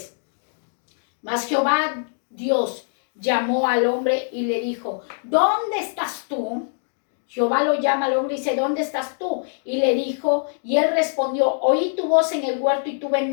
Mas Jehová Dios llamó al hombre y le dijo, ¿dónde estás tú? Jehová lo llama al hombre y dice, ¿dónde estás tú? Y le dijo, y él respondió, oí tu voz en el huerto y tuve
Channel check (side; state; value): right; silent; digital silence